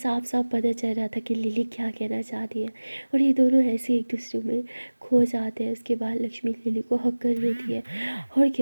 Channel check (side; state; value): both; inverted; correlation -1.00